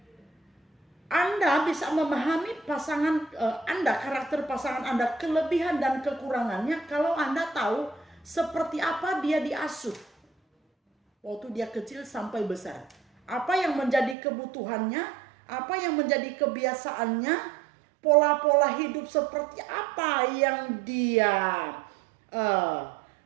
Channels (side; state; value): left; drops out; at 14.2 s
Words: Anda bisa memahami pasangan Anda, karakter pasangan Anda, kelebihan dan kekurangannya kalau Anda tahu seperti apa dia diasuh waktu dia kecil sampai besar. Apa yang menjadi kebutuhannya, apa yang menjadi kebiasaannya, pola-pola hidup seperti apa yang dia